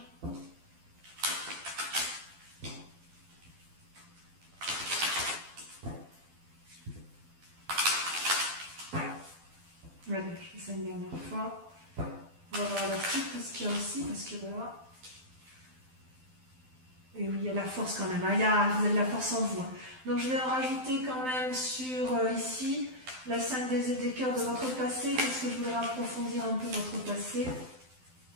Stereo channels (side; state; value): left; late; 12 ms